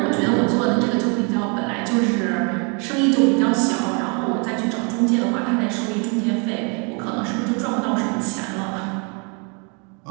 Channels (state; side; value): quieter; left; 35.1 dB